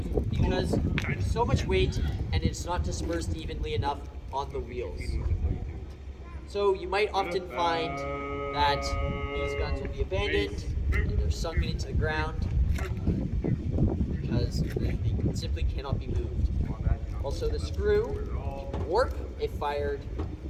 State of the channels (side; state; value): both; identical; correlation 1.00